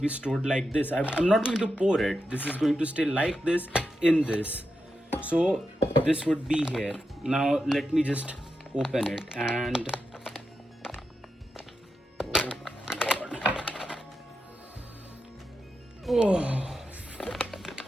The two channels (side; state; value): both; normal; correlation 0.88